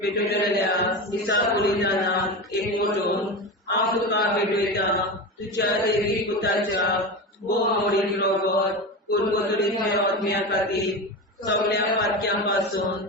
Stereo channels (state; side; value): normal; both; correlation 0.23